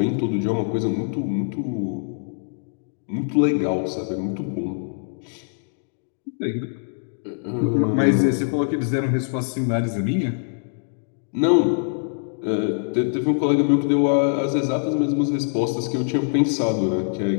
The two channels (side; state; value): right; silent; digital silence